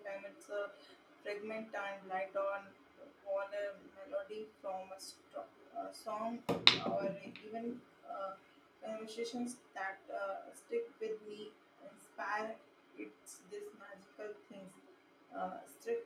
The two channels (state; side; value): identical; both; correlation 1.00